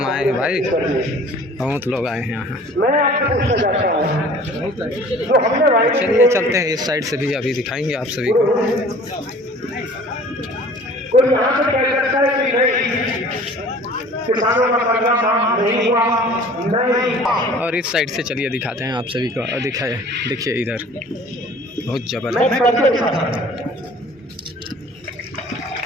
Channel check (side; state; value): both; normal; correlation 0.47